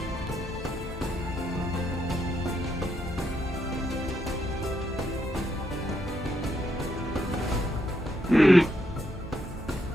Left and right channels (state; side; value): normal; both; correlation 0.78